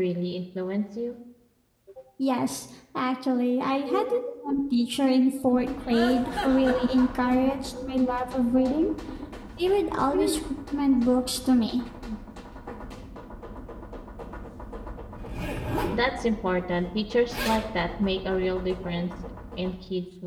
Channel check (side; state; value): both; identical; correlation 1.00